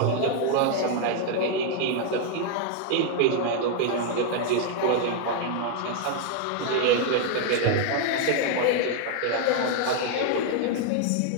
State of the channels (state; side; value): different; both; correlation 0.00